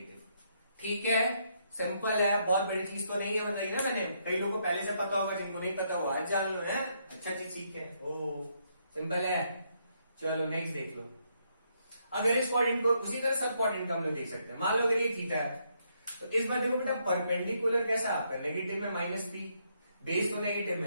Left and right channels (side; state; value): both; inverted; correlation -0.75